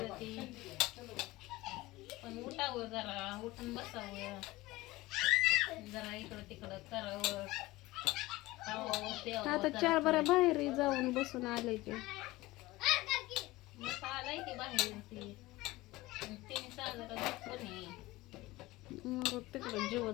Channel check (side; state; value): right; quieter; 19.4 dB